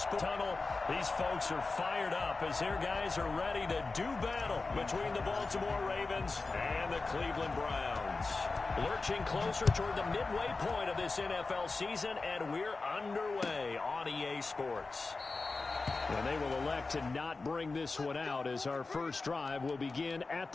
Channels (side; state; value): right; quieter; 3.8 dB